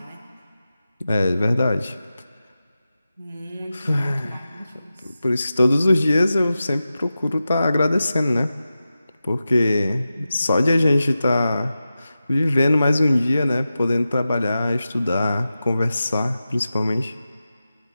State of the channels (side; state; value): both; inverted; correlation -0.93